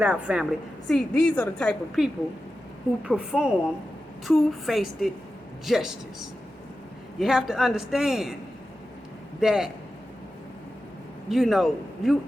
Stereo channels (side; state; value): both; normal; correlation 0.92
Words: out, family. See, these are the type of people who perform two-faced justice. You have to understand that, you know, you